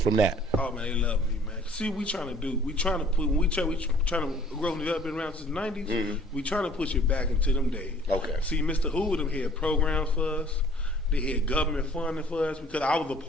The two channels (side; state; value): both; normal; correlation 0.54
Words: that? Oh man, they love me, man. See, we trying to put when we trying to grow and develop been around since the '90s. We trying to push it back into them days. Okay. See, Mr. Hoover them had programs for us. They had government funding for us because I was a